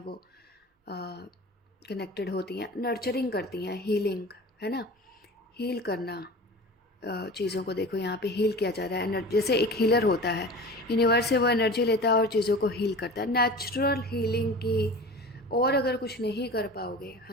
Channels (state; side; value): normal; both; correlation 0.36